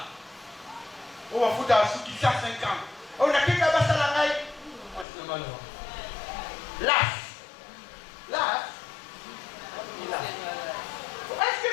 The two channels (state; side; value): drops out; right; at 5.1 s